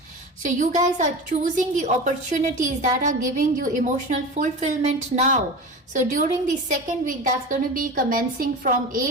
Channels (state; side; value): normal; both; correlation 0.30